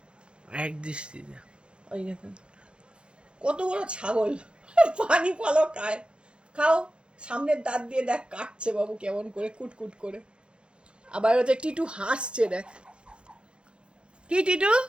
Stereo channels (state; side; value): late; left; 0.055 ms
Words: এক দৃষ্টিতে। ওই দেখুন কত বড় ছাগল, পানি ফলও খায়। খাও, সামনের দাঁত দিয়ে দেখ কাটছে বাবু কেমন করে, কুটকুট করে। আবার হচ্ছে টিটু হাসছে, দেখ। কি টিটু,